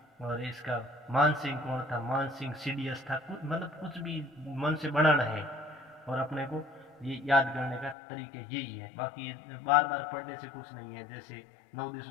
और इसका मान सिंह कौन था, मान सिंह CDS था, कुछ मतलब कुछ भी मन से बनाना है और अपने को ये याद करने का तरीके यही है, बाकी बार बार पढ़ने से कुछ नहीं है। जैसे 9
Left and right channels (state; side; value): drops out; right; at 8.0 s